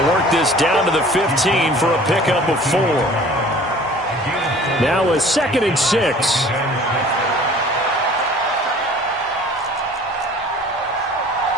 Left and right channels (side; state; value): both; normal; correlation 0.48